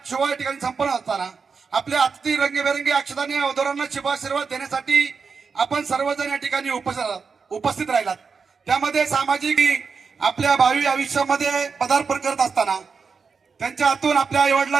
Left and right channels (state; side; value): quieter; left; 5.4 dB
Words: शुभ या ठिकाणी संपन्न असताना आपल्या अतिथी रंगीबेरंगी अक्षतांनी वधूवरांना शुभाशीर्वाद देण्यासाठी आपण सर्वजण या ठिकाणी उपस्थित राहिलात. त्यामध्ये सामाजिक आपल्या भावी आयुष्यामध्ये पदार्पण करत असताना त्यांच्या हातून आपल्या आई